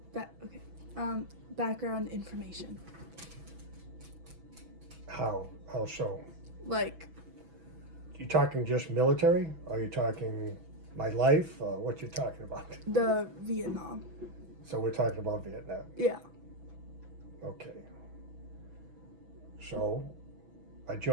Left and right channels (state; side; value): late; left; 6.1 ms